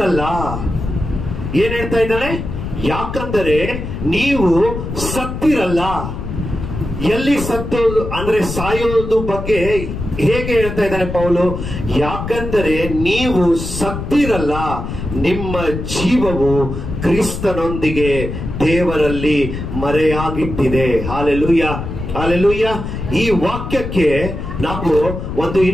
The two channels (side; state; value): left; noise; rumble, 6 dB below the sound